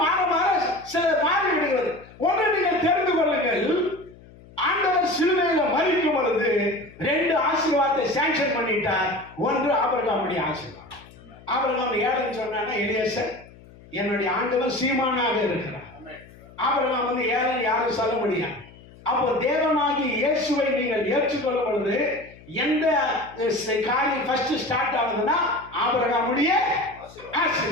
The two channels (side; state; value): left; noise; hum, 22 dB below the sound